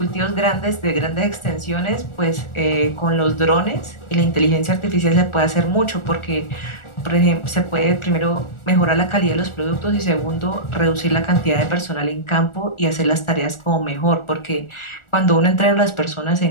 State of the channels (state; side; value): late; right; 1.4 ms